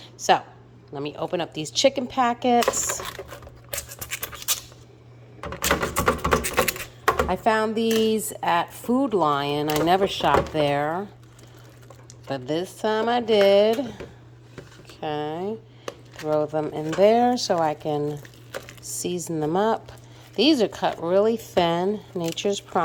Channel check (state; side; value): identical; both; correlation 1.00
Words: So let me open up these chicken packets. I found these at Food Lion. I never shopped there, but this time I did. Okay, throw them in there so I can season them up. These are cut really thin, Nature's